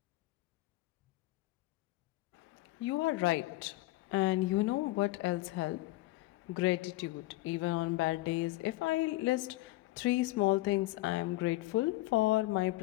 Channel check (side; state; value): right; quieter; 18.9 dB